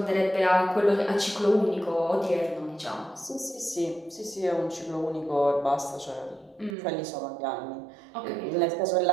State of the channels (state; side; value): drops out; left; at 6.8 s